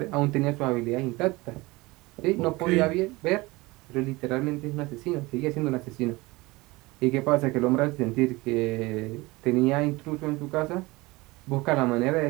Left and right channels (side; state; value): left; quieter; 22.2 dB